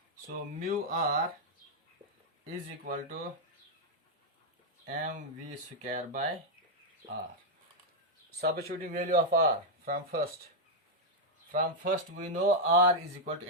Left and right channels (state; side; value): normal; both; correlation -0.02